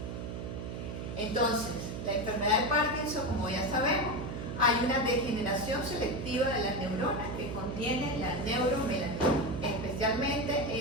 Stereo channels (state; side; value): noise; right; hum, 6 dB below the sound